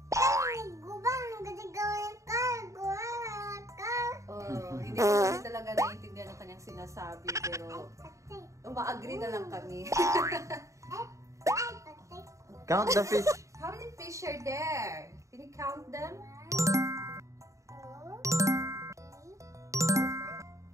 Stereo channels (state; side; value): late; left; 0.15 ms